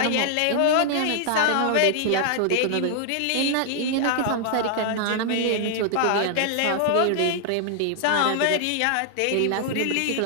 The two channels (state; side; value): different; both; correlation 0.00